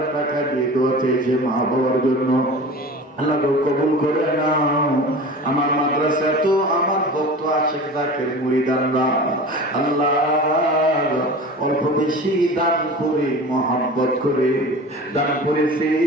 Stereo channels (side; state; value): both; normal; correlation 0.36